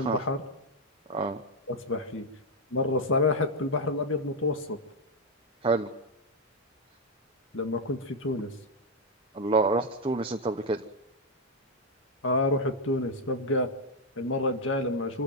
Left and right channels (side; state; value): both; normal; correlation 0.02